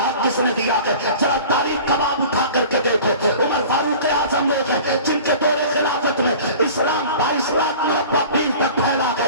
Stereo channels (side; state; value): both; inverted; correlation -0.42